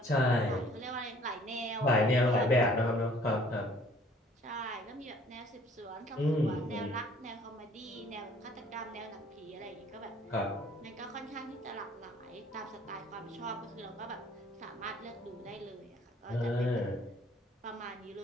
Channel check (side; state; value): both; normal; correlation 0.56